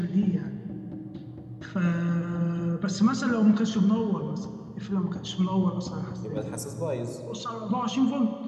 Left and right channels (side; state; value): both; identical; correlation 1.00